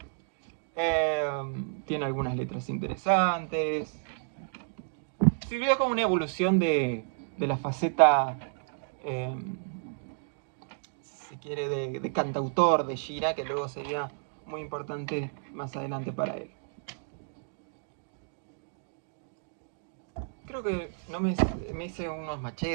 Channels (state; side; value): silent; left; digital silence